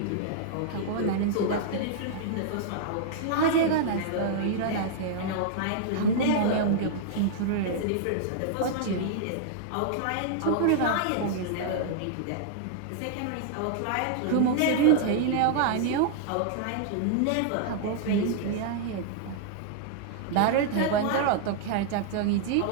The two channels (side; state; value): both; different; correlation -0.01